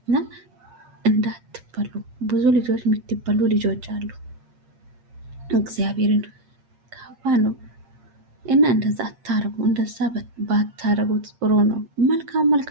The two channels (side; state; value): left; late; 8.6 ms